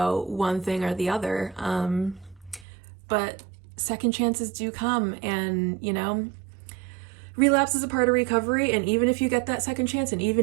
one thing or the other. But second chances do come, and relapse is a part of recovery, and even if you get that second chance, and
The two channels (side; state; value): left; drops out; at 2.7 s